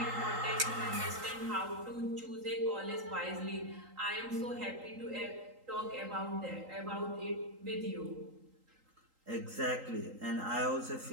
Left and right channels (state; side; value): late; left; 3.8 ms